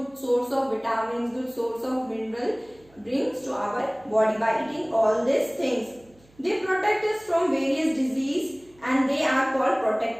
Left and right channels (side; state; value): right; noise; hum, 29 dB below the sound